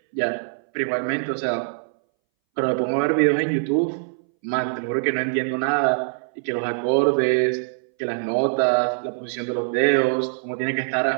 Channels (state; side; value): silent; left; 62 dB below the other